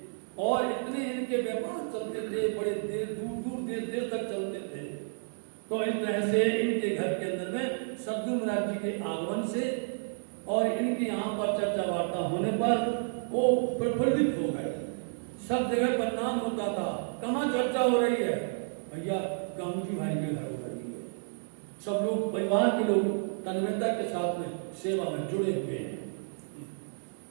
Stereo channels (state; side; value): silent; left; 57 dB below the other